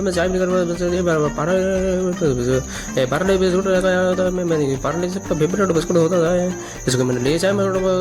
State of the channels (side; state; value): both; identical; correlation 1.00